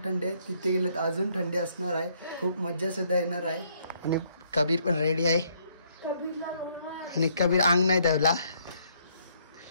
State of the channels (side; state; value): both; inverted; correlation -0.69